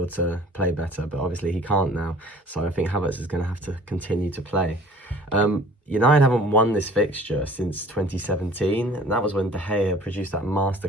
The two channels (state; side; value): normal; both; correlation 0.50